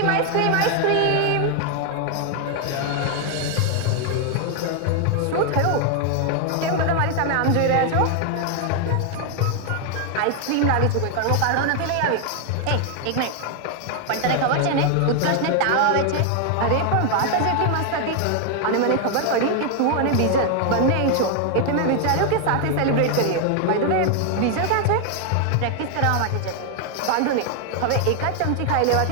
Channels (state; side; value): different; both; correlation 0.00